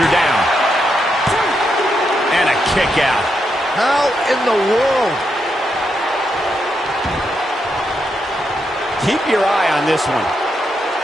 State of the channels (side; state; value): both; normal; correlation 0.82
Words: down. And a kick out. How in the world? Keep your eye on this one.